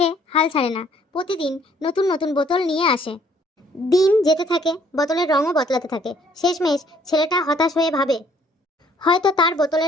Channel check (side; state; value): both; normal; correlation 0.62